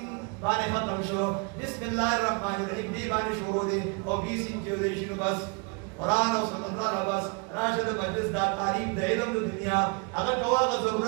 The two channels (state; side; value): quieter; left; 32.8 dB